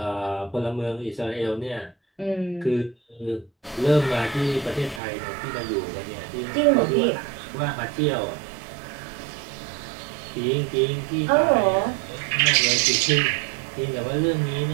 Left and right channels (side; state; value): left; drops out; at 5.0 s